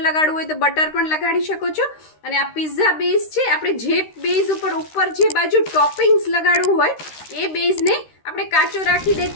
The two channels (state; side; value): late; right; 13 ms